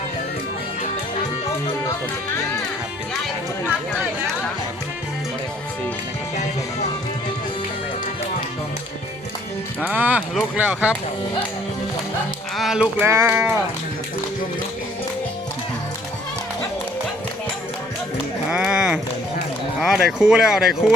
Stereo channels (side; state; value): both; normal; correlation 0.60